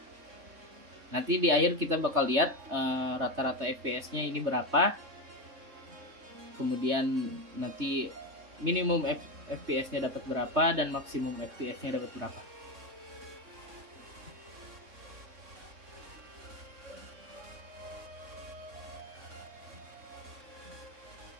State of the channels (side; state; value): left; late; 3.3 ms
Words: Nanti di akhir kita bakal lihat rata-rata fps-nya ini berapa. Kemudian nanti minimum fps-nya dapat berapa dan maksimum fps-nya dapat berapa.